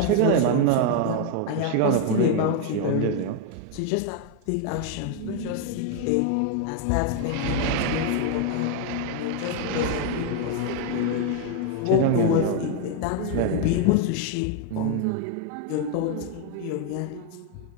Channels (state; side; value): different; both; correlation 0.01